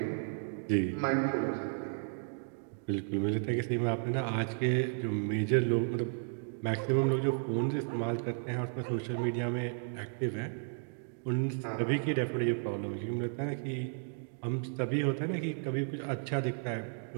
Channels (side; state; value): left; silent; digital silence